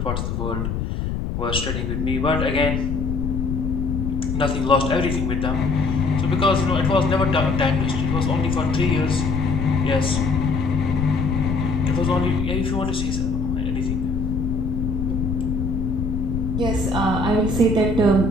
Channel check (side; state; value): left; noise; rumble, 2 dB below the sound